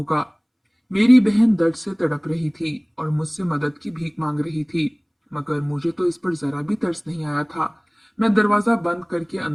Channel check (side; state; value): both; identical; correlation 1.00